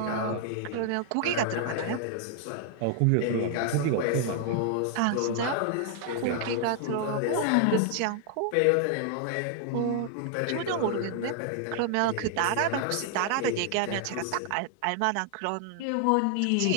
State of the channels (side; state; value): both; different; correlation 0.00